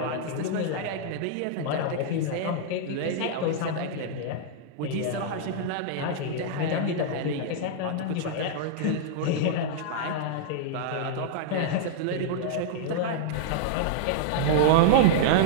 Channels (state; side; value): different; both; correlation -0.01